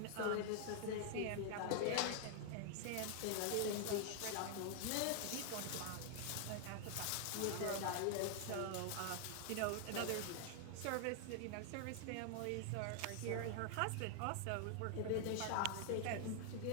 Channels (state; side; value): different; both; correlation 0.00